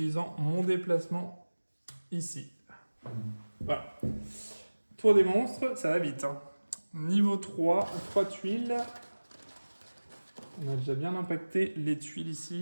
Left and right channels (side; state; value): both; inverted; correlation -1.00